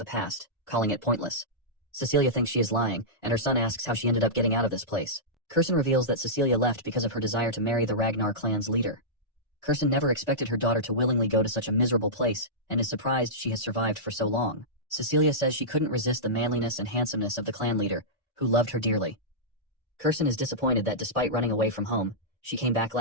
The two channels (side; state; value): both; normal; correlation -0.14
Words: past, calling it pointless. Cecilia thinks she is lying, and her son asks how she ended up getting out of this place. Kurson reveals that Cecilia left because of her desire to marry the Ragnar clan's leader. Kurson never expected her daughter to willingly go to such a miserable place, and is surprised she has survived for so long. Cecilia says she couldn't resist the manliness and handsomeness of the clan leader, who loved her dearly. Kurson is disappointed that despite running away from home, she came back